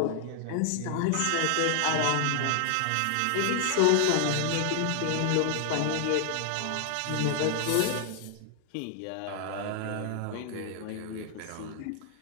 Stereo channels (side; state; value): both; different; correlation 0.00